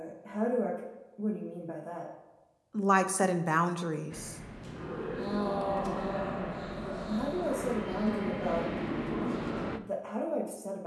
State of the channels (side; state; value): both; identical; correlation 1.00